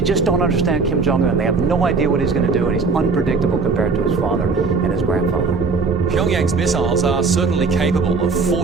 just don't understand Kim Jong-un. They have no idea what he's going to do, and he's unpredictable compared to his father and his grandfather. Pyongyang's missiles are certainly capable of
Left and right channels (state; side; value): quieter; left; 4.4 dB